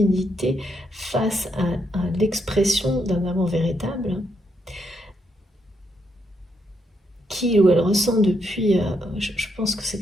face à l'expression d'un amour véritable, qu'il ou elle ressent depuis, je pense que c'est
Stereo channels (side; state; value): both; normal; correlation 0.78